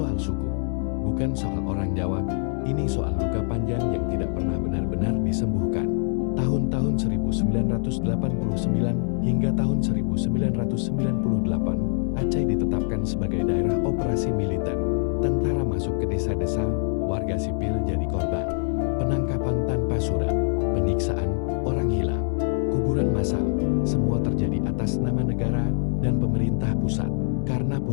suku, bukan soal orang Jawa. Ini soal luka panjang yang tidak pernah benar-benar disembuhkan. Tahun-tahun 1989 hingga tahun 1998, Aceh ditetapkan sebagai daerah operasi militer. Tentara masuk ke desa-desa, warga sipil jadi korban. Penangkapan tanpa surat, penyiksaan, orang hilang, kuburan massal, semua terjadi atas nama negara dan pemerintah pusat. Karena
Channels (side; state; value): right; silent; 62 dB below the other